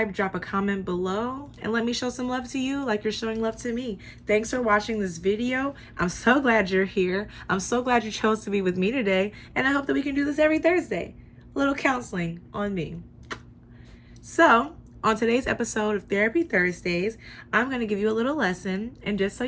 drop a comment below, and let me show some love to you like you're showing love to me. Thanks for watching this video. I'm so glad you're here. I'm so glad you chose to be with me today, and I hope that we can do this every Thursday. A little counseling on me. So, on today's episode of Therapy Thursdays, I'm going to give you a little lesson, and just so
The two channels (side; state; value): both; identical; correlation 1.00